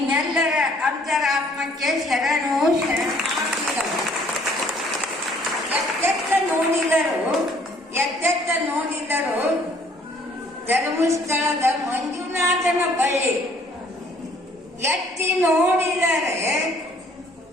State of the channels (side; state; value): both; normal; correlation 0.60